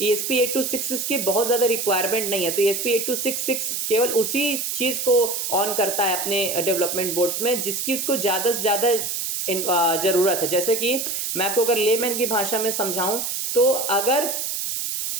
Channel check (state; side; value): noise; right; hiss, 2 dB below the sound